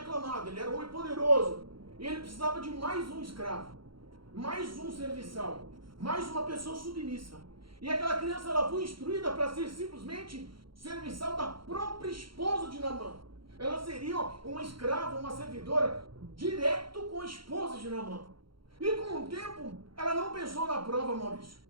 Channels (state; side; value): late; left; 0.73 ms